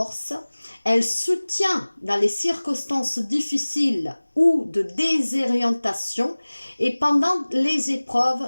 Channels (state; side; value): inverted; both; correlation -1.00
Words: elle soutient dans les circonstances difficiles ou de désorientation et pendant les